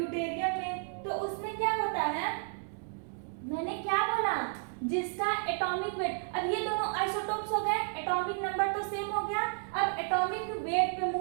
में, तो उसमें क्या होता है, मैंने क्या बोला, जिसका एटॉमिक वेट, अब ये दोनों आइसोटोप्स हो गए, एटॉमिक नंबर तो सेम हो गया। अब एटॉमिक वेट पे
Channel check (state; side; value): silent; left; 56 dB below the other